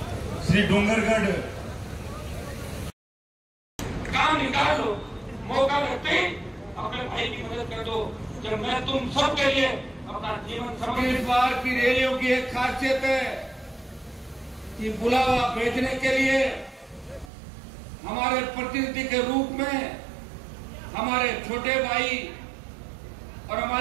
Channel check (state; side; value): drops out; left; at 17.3 s